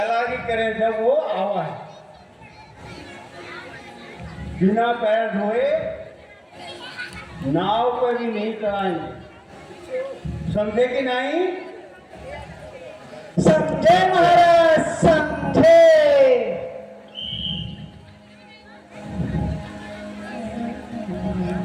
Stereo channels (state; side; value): identical; both; correlation 1.00